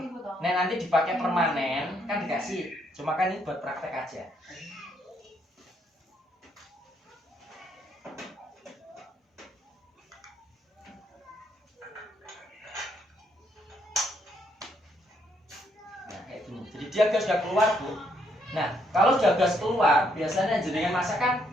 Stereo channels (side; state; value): both; normal; correlation 0.73